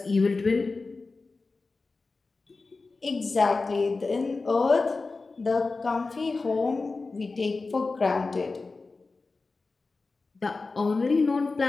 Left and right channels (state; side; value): quieter; right; 3.8 dB